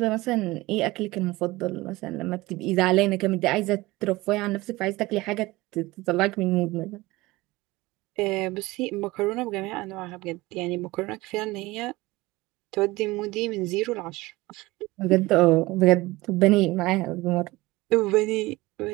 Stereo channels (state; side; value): quieter; left; 20.1 dB